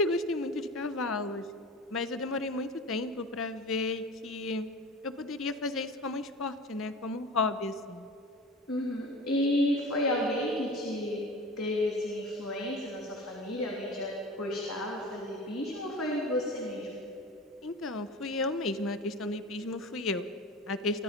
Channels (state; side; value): normal; both; correlation 0.34